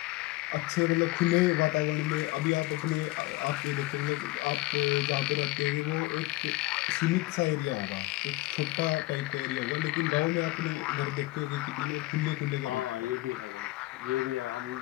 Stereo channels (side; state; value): right; quieter; 19.2 dB